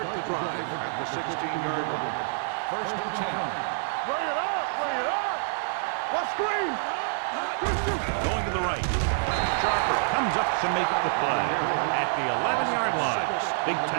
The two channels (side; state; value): left; silent; digital silence